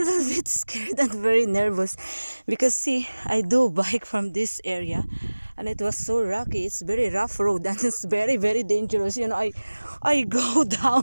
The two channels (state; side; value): inverted; both; correlation -1.00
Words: scared and very nervous because see, I do bike from this area and it was so rocky. It's very rough road and it's very dangerous. I go